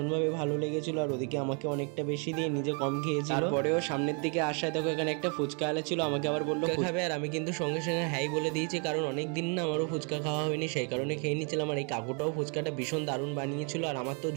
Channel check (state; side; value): quieter; left; 37.8 dB